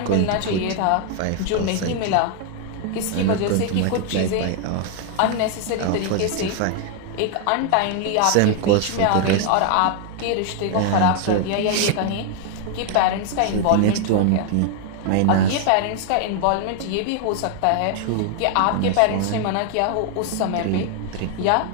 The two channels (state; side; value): different; both; correlation 0.00